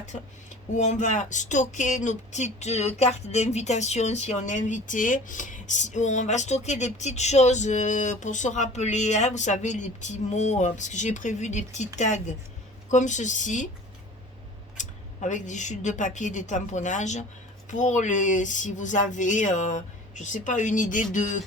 où on va stocker nos petites cartes d'invitation si on est invité, où on va stocker des petites choses pour se rappeler, hein, vous savez, les petits mots, parce que j'ai prévu des petits tags comme ceci, avec des chutes de papier, des tamponnages, pour les, si vous avez, je sais pas, une idée de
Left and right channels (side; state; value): both; normal; correlation 0.43